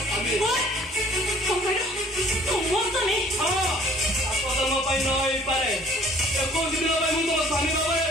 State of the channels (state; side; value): normal; both; correlation 0.54